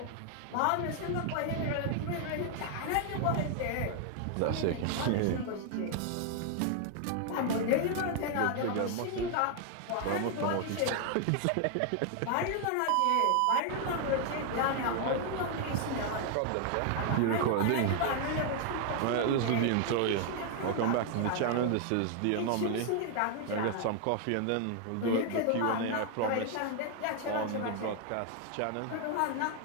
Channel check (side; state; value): both; different; correlation 0.00